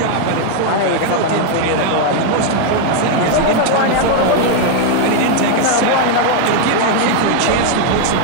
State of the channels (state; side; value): different; both; correlation 0.00